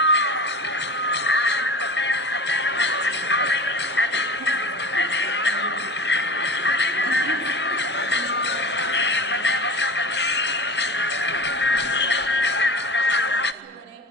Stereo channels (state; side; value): normal; both; correlation 0.36